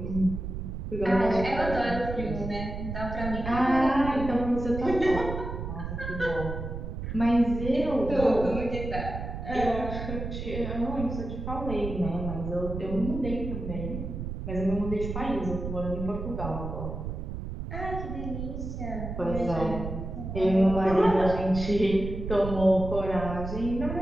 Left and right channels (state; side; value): noise; right; rumble, 6 dB below the sound